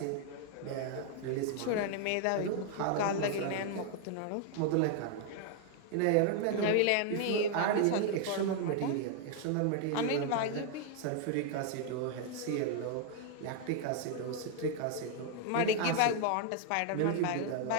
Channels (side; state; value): both; different; correlation 0.00